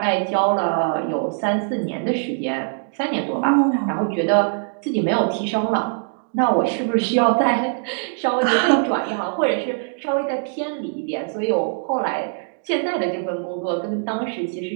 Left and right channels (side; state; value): left; silent; digital silence